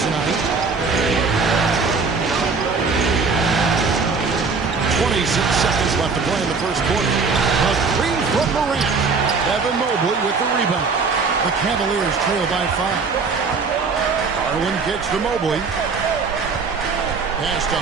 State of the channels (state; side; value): quieter; left; 4.7 dB